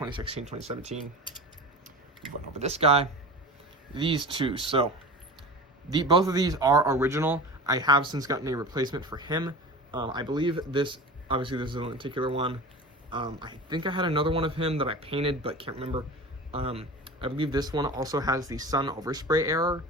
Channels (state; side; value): normal; both; correlation 0.33